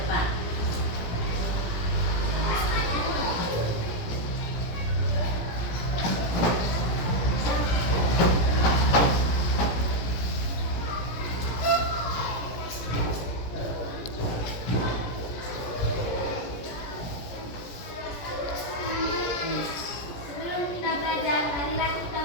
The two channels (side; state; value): right; late; 17 ms